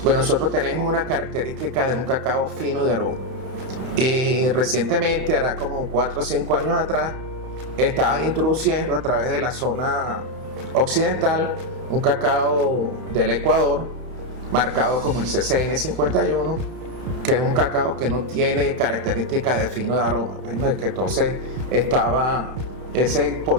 Pues nosotros tenemos una característica de un cacao fino de aroma, y recientemente, hará como 4 o 5 años atrás, estaban introduciendo a través de la zona occidental un cacao del Ecuador marcado como el CCN 51, que es un cacao que no tiene características de fino de aroma. Bueno, es que entonces estaba ese, por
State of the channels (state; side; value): late; left; 31 ms